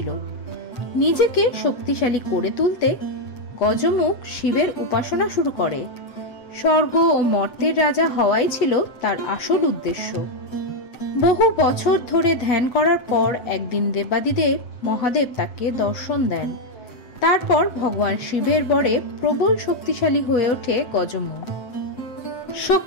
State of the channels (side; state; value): right; late; 7.9 ms